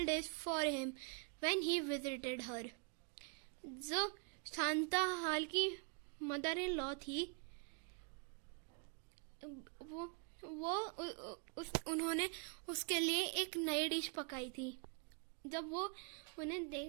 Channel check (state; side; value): quieter; left; 38.3 dB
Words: dish for him when he visited her. जो शांताहाल की mother in law थी, उन्होंने उसके लिए एक नई डिश पकाई थी जब वो